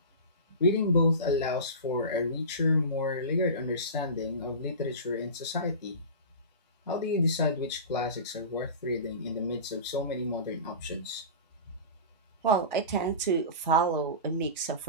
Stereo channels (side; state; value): both; inverted; correlation -0.30